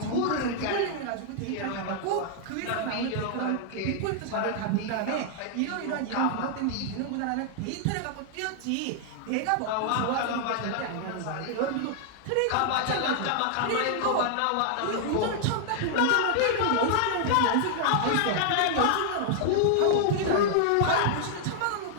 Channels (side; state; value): both; different; correlation -0.01